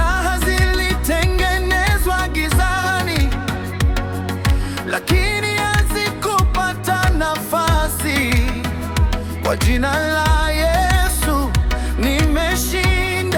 zilitengenezwa gizani, lakini hazikupata nafasi. Kwa jina la Yesu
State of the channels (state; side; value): identical; both; correlation 1.00